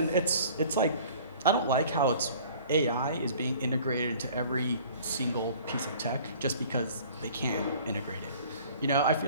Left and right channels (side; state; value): both; inverted; correlation -0.49